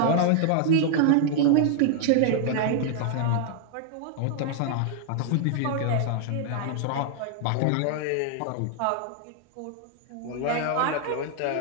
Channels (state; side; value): different; both; correlation -0.01